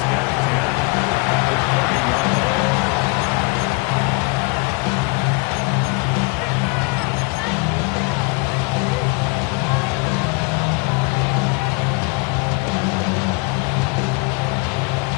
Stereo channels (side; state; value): right; quieter; 28.9 dB